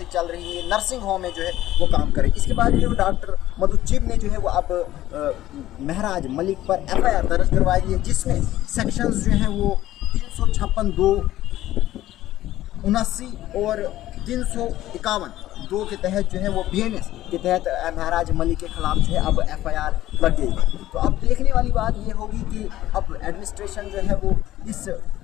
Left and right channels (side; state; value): right; quieter; 14.3 dB